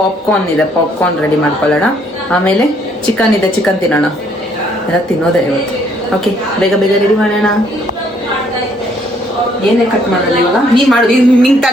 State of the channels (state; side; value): normal; both; correlation 0.66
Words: ಇದೆ, ಪಾಪ್ಕಾರ್ನ್ ರೆಡಿ ಮಾಡ್ಕೊಳ್ಳೋಣ. ಆಮೇಲೆ ಚಿಕನ್ ಇದೆ, ಚಿಕನ್ ತಿನ್ನೋಣ. ಎಲ್ಲ ತಿನ್ನೋದೇ ಇವತ್ತು. ಓಕೆ, ಬೇಗ ಬೇಗ ರೆಡಿ ಮಾಡೋಣ. ಏನೇ ಕಟ್ ಮಾಡೋಲ್ಲ ಇವಾಗ? ನೀನು ಮಾಡು, ನಿಂಗೆ